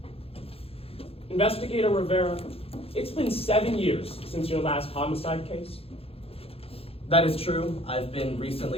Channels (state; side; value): late; right; 0.28 ms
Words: Investigator Rivera, it's been 7 years since your last homicide case. That is true. I've been